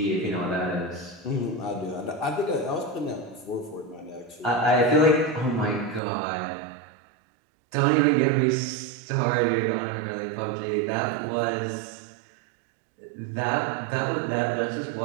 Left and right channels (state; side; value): drops out; left; at 6.0 s